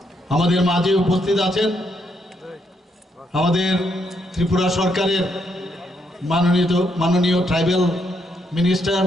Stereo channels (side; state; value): both; normal; correlation 0.76